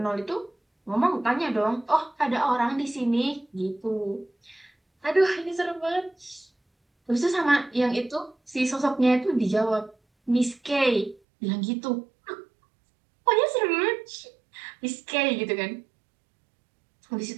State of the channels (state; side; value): drops out; left; at 11.2 s